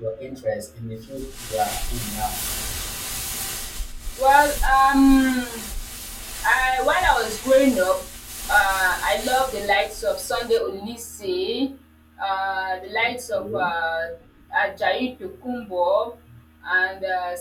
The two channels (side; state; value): both; identical; correlation 1.00